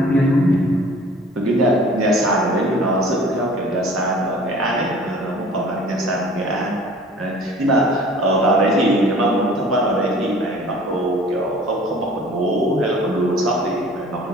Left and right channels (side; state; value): both; normal; correlation 0.48